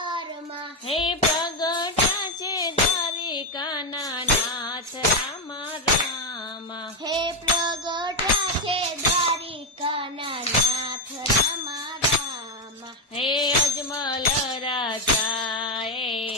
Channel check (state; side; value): normal; both; correlation 0.07